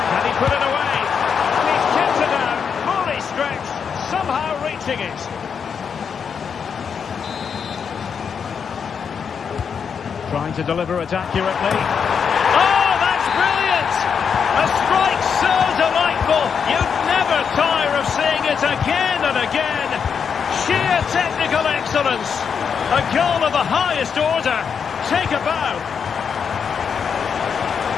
Can he put it away? And he's kept it out. Fully stretched. Somehow reaching it. Trying to deliver it accurately. Oh, that's brilliant! A strike so delightful. You'd never tire of seeing it again and again. Sheer Technical excellence. A goal of the highest order. Take a bow.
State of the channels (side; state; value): right; quieter; 6.7 dB